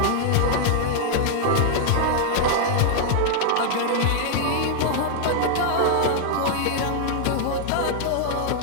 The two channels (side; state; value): both; different; correlation -0.01